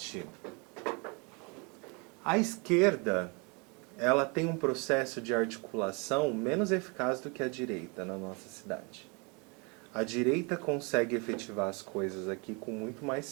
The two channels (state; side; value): quieter; left; 31.9 dB